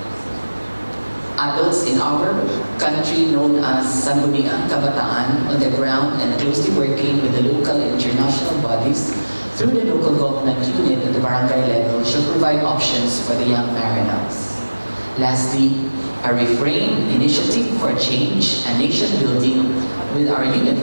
adults in our country known as Sangguniang Kabataan on the ground and closely working with the local and international bodies through the local government unit at the barangay level should provide options for the young Marinos. Lastly, a refrain initiative for change and nation building with our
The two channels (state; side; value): inverted; both; correlation -1.00